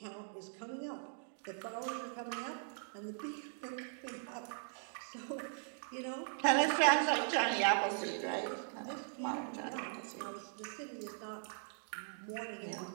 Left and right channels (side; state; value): left; silent; digital silence